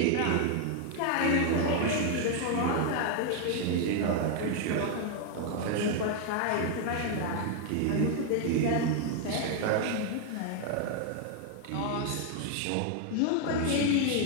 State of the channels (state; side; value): different; both; correlation 0.00